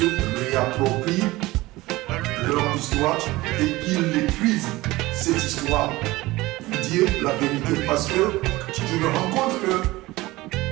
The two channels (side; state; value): left; quieter; 19.5 dB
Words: réapproprient leur histoire et qu'ils écrivent cette histoire pour dire la vérité. Parce que je me rends compte que